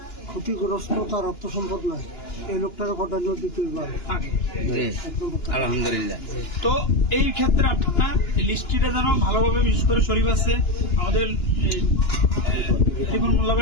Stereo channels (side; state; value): right; late; 2.9 ms